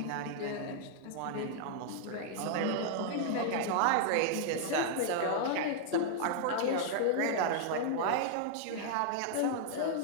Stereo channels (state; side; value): different; both; correlation -0.01